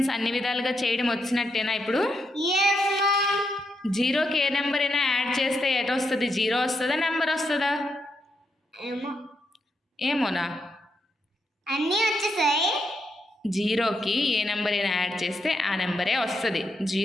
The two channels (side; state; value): both; normal; correlation 0.81